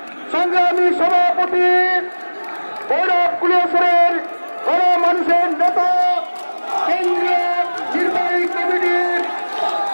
সংগ্রামী সভাপতি ভৈরব কুলিয়াসরের গণমানুষের নেতা কেন্দ্রীয় নির্বাহী কমিটির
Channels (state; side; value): inverted; both; correlation -1.00